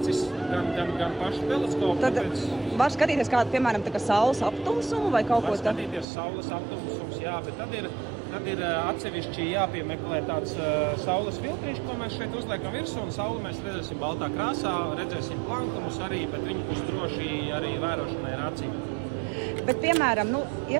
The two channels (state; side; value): drops out; left; at 6.1 s